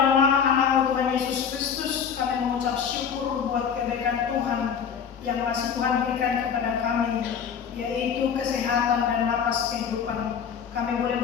nama anak-Mu Tuhan Yesus Kristus, kami mengucap syukur buat kebaikan Tuhan yang masih Tuhan berikan kepada kami, yaitu kesehatan dan napas kehidupan. Kami boleh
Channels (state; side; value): quieter; right; 7.3 dB